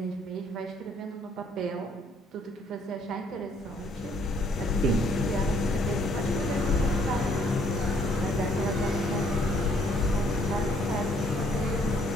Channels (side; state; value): both; normal; correlation 0.65